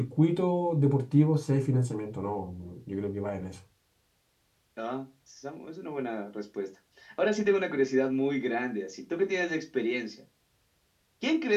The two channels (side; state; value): both; identical; correlation 1.00